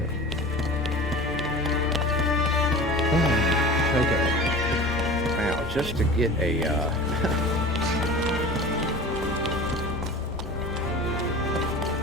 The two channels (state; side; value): normal; both; correlation 0.36